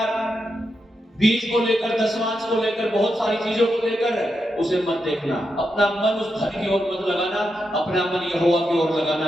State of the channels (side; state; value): both; normal; correlation 0.85